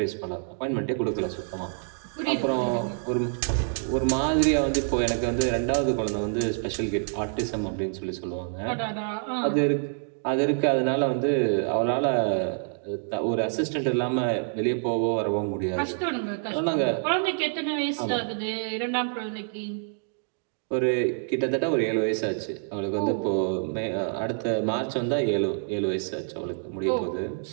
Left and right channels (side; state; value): left; silent; digital silence